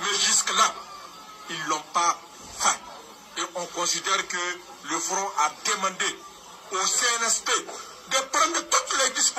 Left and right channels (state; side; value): identical; both; correlation 1.00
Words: jusque-là, ils ne l'ont pas fait. Et on considère que le Front a demandé au CNSP de prendre toutes les